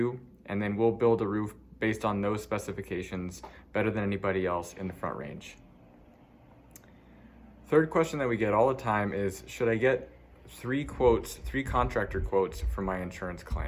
and then we'll build a roof based on those specifications better than anybody else in the Front Range. Third question that we get all the time is, should I get 3 contractor quotes for my insurance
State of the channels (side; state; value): both; identical; correlation 1.00